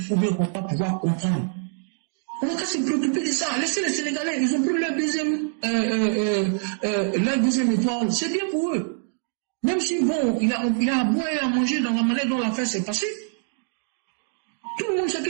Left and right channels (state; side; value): silent; left; digital silence